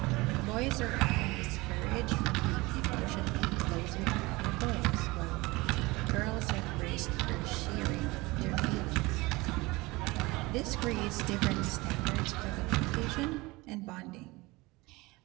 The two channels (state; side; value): quieter; left; 22.4 dB